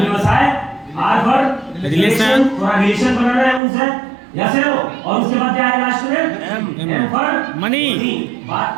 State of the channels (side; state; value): left; drops out; at 3.6 s